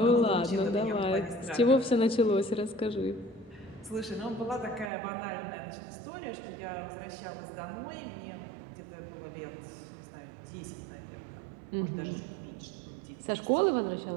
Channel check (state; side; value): drops out; left; at 4.9 s